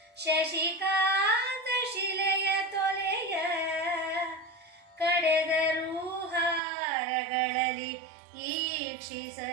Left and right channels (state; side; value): drops out; left; at 6.6 s